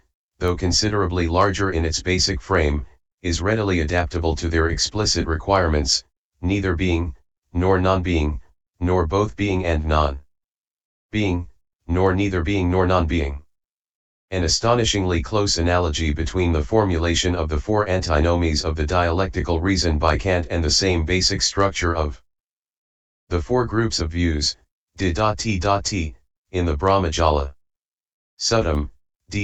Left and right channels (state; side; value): identical; both; correlation 1.00